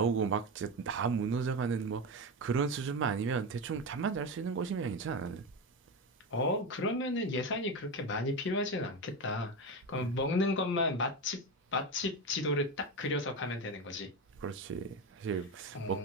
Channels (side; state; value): both; normal; correlation 0.18